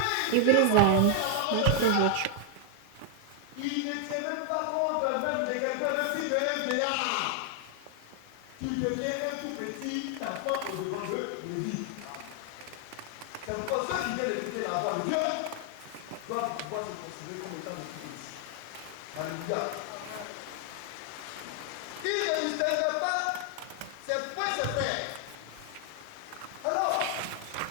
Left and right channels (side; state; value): both; different; correlation 0.00